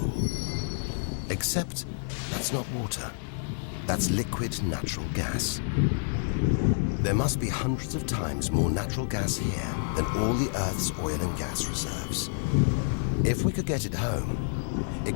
Except that's not water. That's liquid natural gas. There must be hundreds of times more natural gas here than all the Earth's oil and gas reserves. If we could get it home,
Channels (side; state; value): right; silent; 59 dB below the other